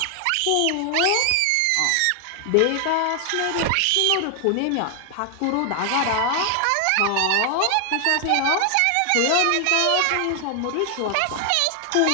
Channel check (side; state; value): both; different; correlation 0.00